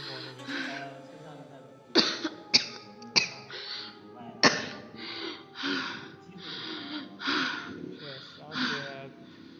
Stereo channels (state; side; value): identical; both; correlation 1.00